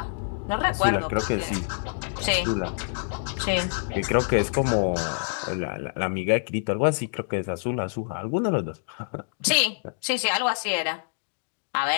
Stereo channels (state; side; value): silent; right; digital silence